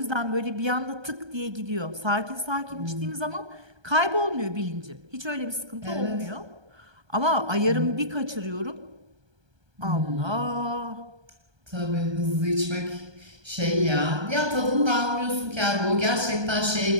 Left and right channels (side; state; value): left; late; 1.3 ms